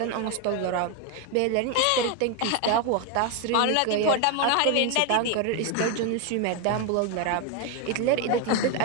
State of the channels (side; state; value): both; different; correlation 0.02